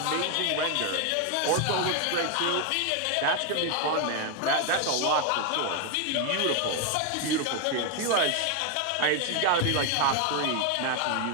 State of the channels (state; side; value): different; both; correlation 0.01